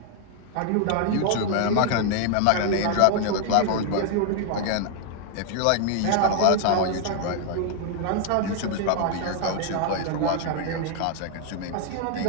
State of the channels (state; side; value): different; both; correlation 0.00